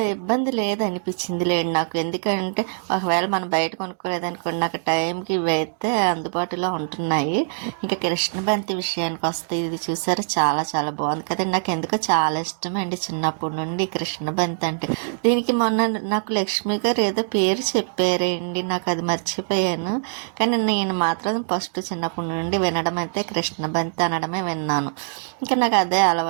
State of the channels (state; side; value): silent; left; digital silence